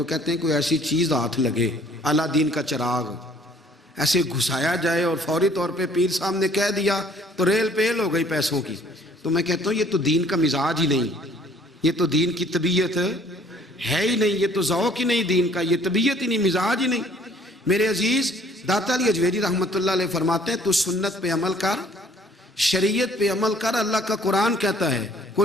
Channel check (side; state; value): both; normal; correlation 0.58